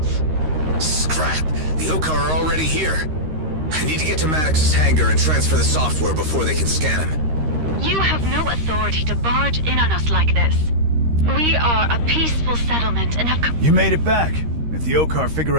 Scrap! The Okar are already here. I need to get to Maddox's hangar and transfer the software before they can scan him. You have no authority to barge in on us like this. We are a peaceful settlement and have... You made it back. If the Okar figure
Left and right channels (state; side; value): late; left; 13 ms